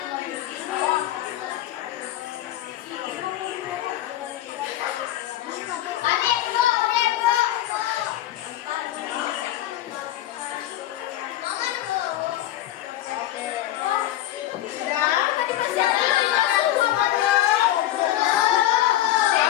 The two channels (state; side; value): quieter; right; 13.7 dB